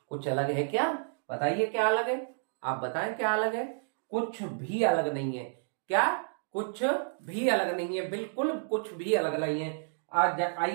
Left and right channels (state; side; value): silent; left; digital silence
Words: कुछ अलग है क्या, बताइए क्या अलग है, आप बताएं क्या अलग है। कुछ भी अलग नहीं है। क्या, कुछ भी अलग नहीं है, बिल्कुल कुछ भी अलग नहीं है।